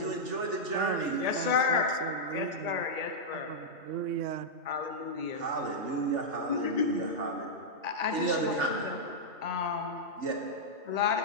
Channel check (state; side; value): late; left; 3.4 ms